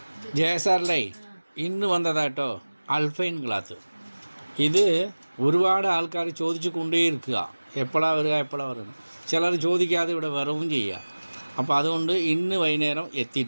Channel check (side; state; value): both; inverted; correlation -1.00